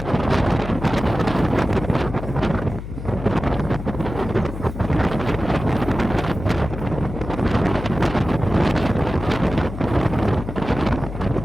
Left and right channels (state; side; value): noise; left; hum, 9 dB below the sound